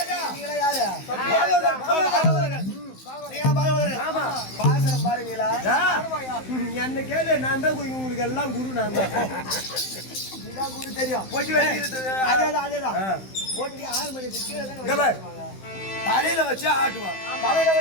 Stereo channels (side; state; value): right; late; 15 ms